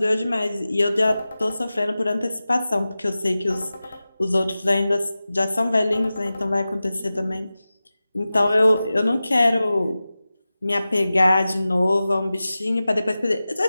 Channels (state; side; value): inverted; both; correlation -0.95